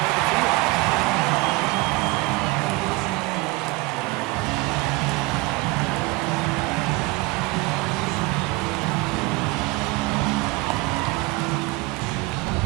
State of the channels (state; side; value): quieter; left; 22.2 dB